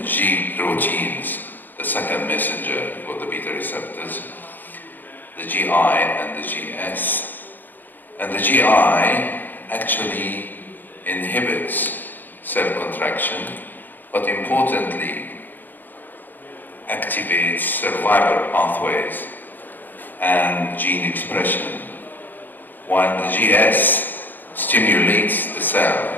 G proteins, the second messenger for the beta receptors, the GI and the GS. And the GI actually inhibits cell contraction, but importantly activates survival pathways and gene expression, while the GS stimulates the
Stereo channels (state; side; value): late; right; 0.088 ms